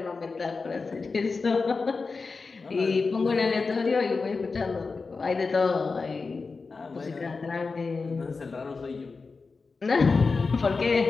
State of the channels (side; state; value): right; quieter; 4.3 dB